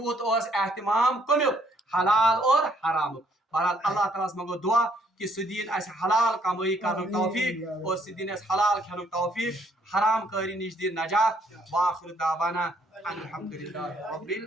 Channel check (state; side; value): normal; both; correlation 0.67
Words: اس اہتمام کمیک حلال اور حرام. بہرحال اللہ تعالیٰ منگو دعا کہ سہ دین اس حلال کمائی کرن توفیق اور سہ دین اس حلال کھین توفیق, حرام کاری نش دین نجات. واخر دعوانا الحمدللہ رب